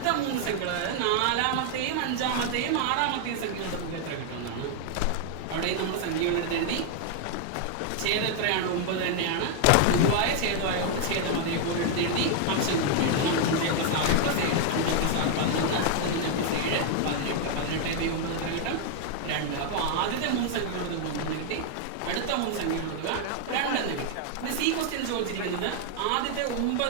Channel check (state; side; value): different; both; correlation 0.00